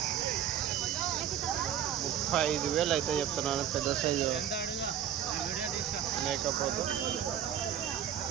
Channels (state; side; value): quieter; left; 9.7 dB